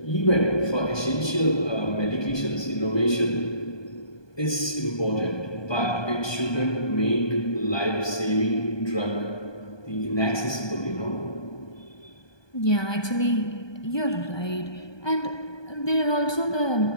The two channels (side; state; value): right; late; 1.2 ms